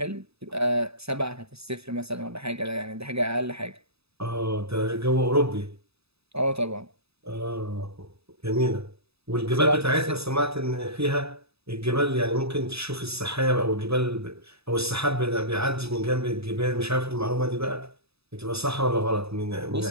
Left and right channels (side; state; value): left; late; 0.78 ms